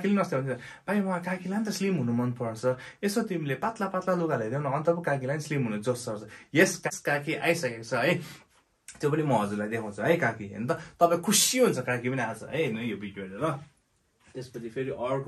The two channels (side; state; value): both; identical; correlation 1.00